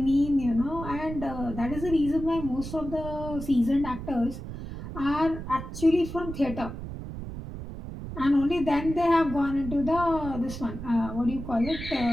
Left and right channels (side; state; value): right; noise; rumble, 9 dB below the sound